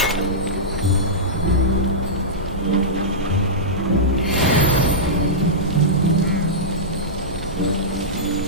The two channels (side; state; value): both; normal; correlation -0.13